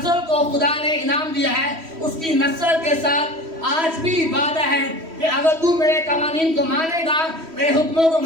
को खुदा ने इनाम दिया है। उसकी नस्ल के साथ आज भी वादा है कि अगर तू मेरे कवानीन को मानेगा, मेरे हुक्मों को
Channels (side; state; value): left; late; 3.1 ms